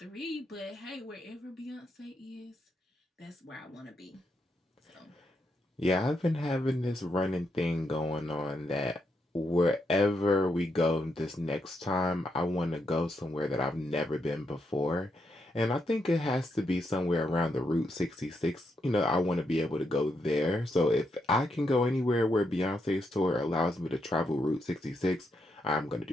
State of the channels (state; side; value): normal; both; correlation 0.80